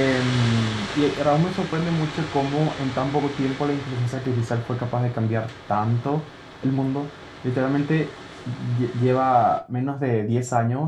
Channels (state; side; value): identical; both; correlation 1.00